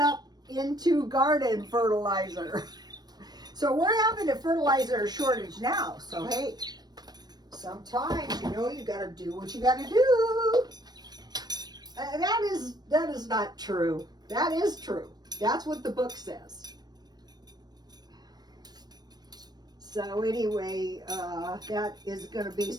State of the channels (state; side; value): late; left; 0.19 ms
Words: into garden fertilizer. So we're having a fertilizer shortage now. So hey, sometimes, you know, you got to do what you got to do. That is not true. That is true. That's what the book says. So anyway, that is going to be